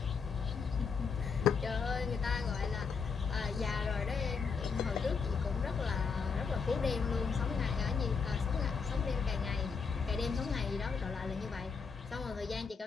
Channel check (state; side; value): quieter; right; 5.5 dB